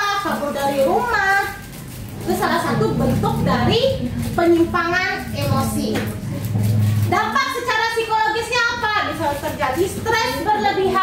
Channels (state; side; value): identical; both; correlation 1.00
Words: kabur dari rumah, itu salah satu bentuk dari penyimpangan emosi. Dampak secara psikologisnya apa? Bisa terjadi stres